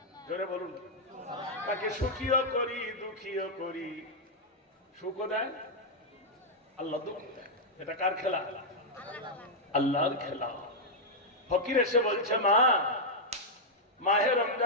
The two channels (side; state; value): both; normal; correlation -0.04